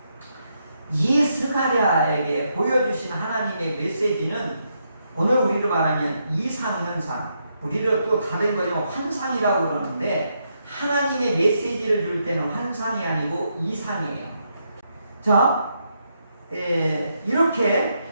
이 스가랴에게 보여주신 하나님의 메시지는 오늘 우리로 말하면 이상현상, 우리를 또 다른 거지만 환상이라고 그러는데, 하나님의 메시지를 줄 때는 환상이 아니고 이상이에요. 자,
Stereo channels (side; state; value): both; inverted; correlation -0.80